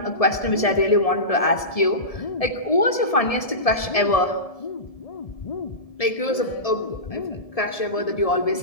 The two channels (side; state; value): right; late; 1.7 ms